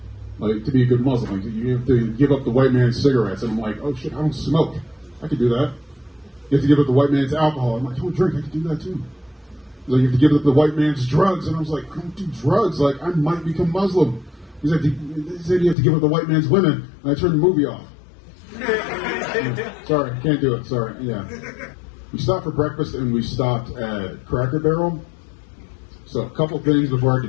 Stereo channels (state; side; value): drops out; right; at 15.8 s